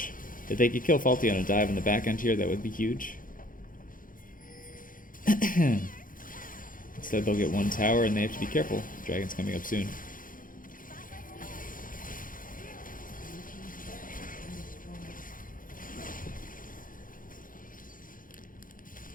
If they could kill Faulty on a dive in the back end here, that would be huge. Instead, they'll get one tower, and they have to be careful. Dragon's coming up soon.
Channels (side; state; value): right; late; 0.40 ms